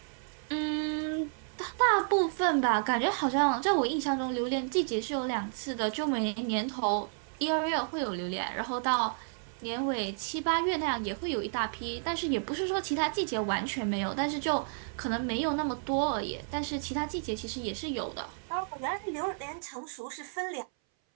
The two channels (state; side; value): silent; left; 57 dB below the other